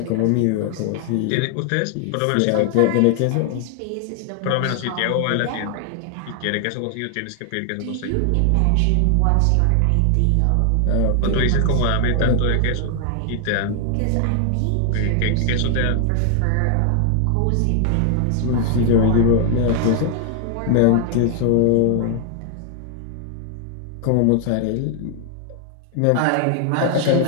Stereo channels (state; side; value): different; both; correlation 0.00